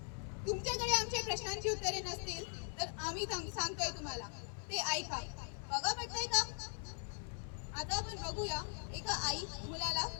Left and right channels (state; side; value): silent; right; 51 dB below the other